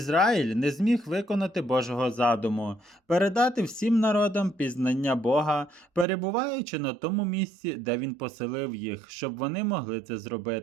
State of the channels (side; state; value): left; drops out; at 6.1 s